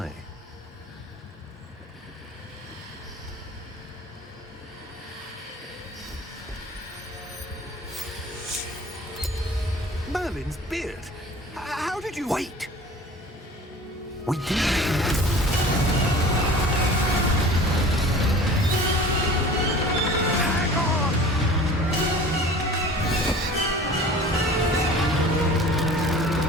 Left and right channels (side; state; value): both; normal; correlation 0.43